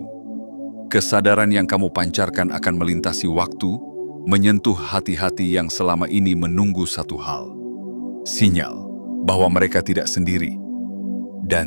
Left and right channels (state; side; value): inverted; both; correlation -1.00